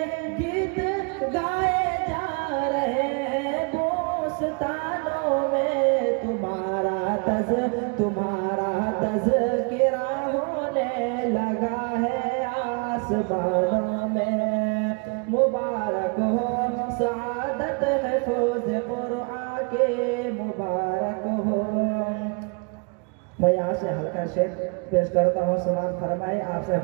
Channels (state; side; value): quieter; left; 35.5 dB